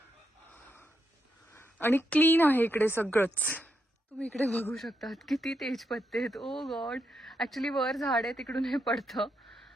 आणि क्लीन आहे इकडे सगळंच. तुम्ही इकडे बघू शकतात किती तेजपत्ते आहेत. ओ गॉड, ॲक्च्युली वर झाड आहे तिकडून हे पडतं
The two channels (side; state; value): both; normal; correlation 0.82